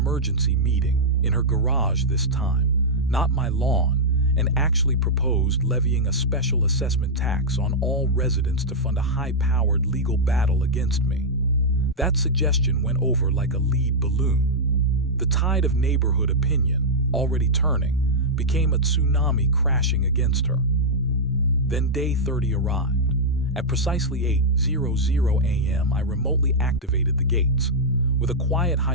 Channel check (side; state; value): both; normal; correlation -0.06